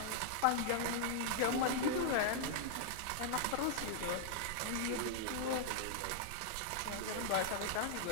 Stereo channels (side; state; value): both; different; correlation -0.01